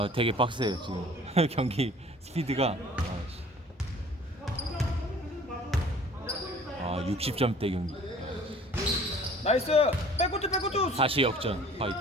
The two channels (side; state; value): both; normal; correlation 0.50